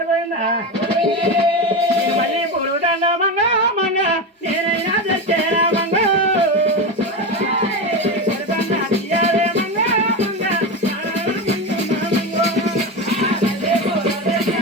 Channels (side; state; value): both; normal; correlation 0.18